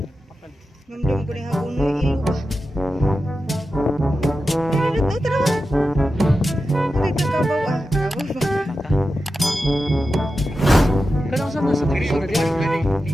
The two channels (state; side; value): normal; both; correlation 0.91